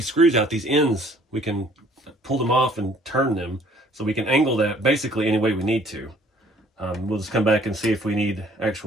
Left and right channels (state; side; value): normal; both; correlation 0.58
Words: screws out, these ends, we can pull them off and turn them, so we can angle that basically any way we need to. We'll just come back and see if we need